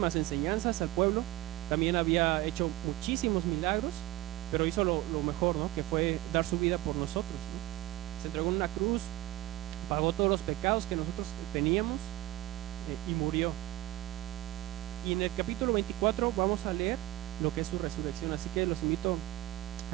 enseñanzas al pueblo, también había hecho muchísimos milagros, pero hizo lo mejor, ¿no? Que fue dar su vida por nosotros, ¿no? Se entregó en una cruz, pagó todos los pecados que nosotros teníamos y murió. Y en el capítulo 24 vamos a leer lo que es su resurrección, así que los invito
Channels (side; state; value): left; quieter; 16.8 dB